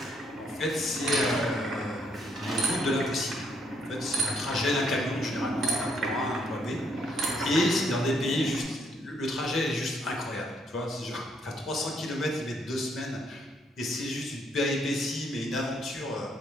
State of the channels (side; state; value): both; normal; correlation 0.72